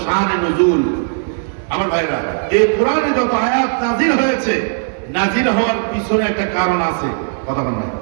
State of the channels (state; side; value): silent; left; 66 dB below the other